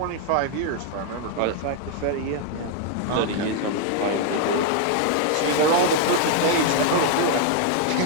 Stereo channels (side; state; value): both; different; correlation 0.00